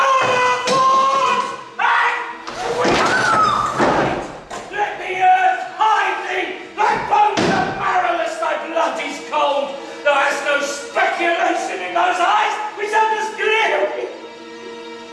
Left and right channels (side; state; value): both; identical; correlation 1.00